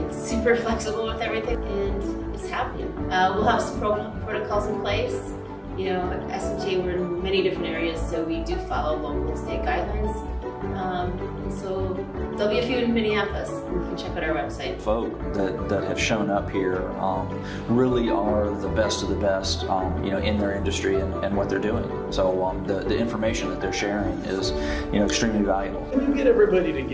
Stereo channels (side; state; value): both; identical; correlation 1.00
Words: super flexible with everything, and it's happening. We'll have some protocols in place. You know, at SMTA, we're in many different areas, so we do follow local and state guidelines. And so there'll be a few in Minneapolis. You can check out our website. Folk that have shown up here really are the best of the best, you know, in their industry and what they're doing. So the information that they're sharing is, you know, extremely valuable. When you get everybody